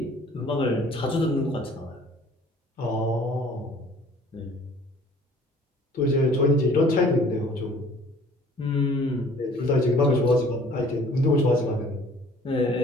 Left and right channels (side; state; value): both; normal; correlation 0.53